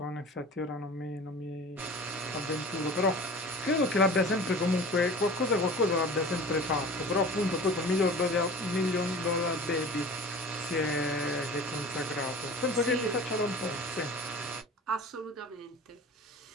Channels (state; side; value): normal; both; correlation 0.39